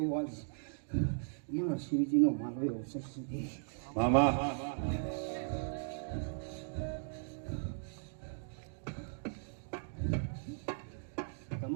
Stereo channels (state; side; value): silent; left; digital silence